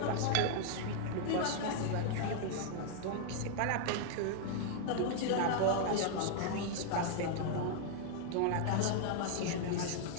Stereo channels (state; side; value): different; both; correlation -0.01